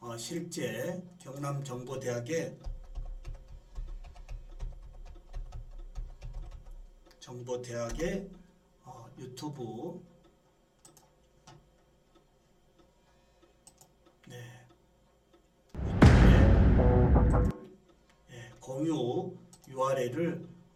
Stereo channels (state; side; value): identical; both; correlation 1.00